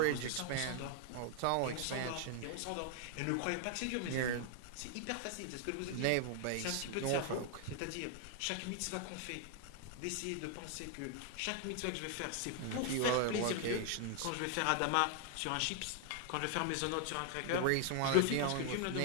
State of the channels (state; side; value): different; both; correlation 0.00